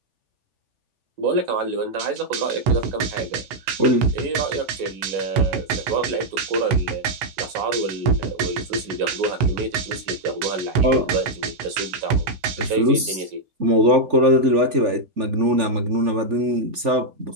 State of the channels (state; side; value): late; left; 3.4 ms